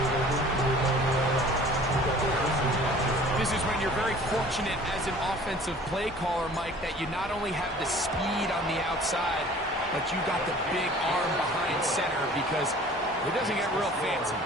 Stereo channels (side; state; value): both; normal; correlation 0.48